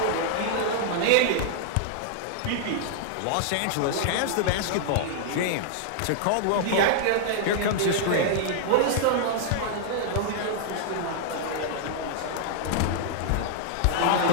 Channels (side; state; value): both; different; correlation -0.01